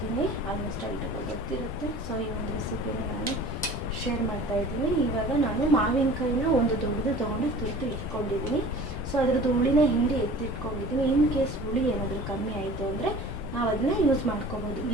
ಆಲ್ಮೋಸ್ಟ್ ಎಲ್ರಿಗೂ ಗೊತ್ತಿರುತ್ತೆ. ಈ ಒಂದು ರೆಸಿಪಿನ ನಾನು ಶೇರ್ ಮಾಡ್ತಾಯಿದ್ದೀನಿ. ಇವಾಗ ನಾನು ಮಾವಿನಕಾಯಿನ ಒಂದು ದೊಡ್ಡದು ತೊಗೊಂಡು ತುರಿದು ಇಟ್ಕೊಂಡಿದ್ದೀನಿ. ಅದ್ರದ್ದು ಹುಳಿನ ಹಿಂಡಿ ಎತ್ತಿಟ್ಕೊಂಡಿದ್ದೀನಿ. ಇನ್ ಕೇಸ್ ಹುಳಿ ಏನಾದರೂ ಕಮ್ಮಿ ಆಯಿತು ಅಂದರೆ ನಾವು ಅದನ್ನ ಯೂಸ್ ಮಾಡ್ಕೋಬೋದು.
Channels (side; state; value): both; normal; correlation 0.43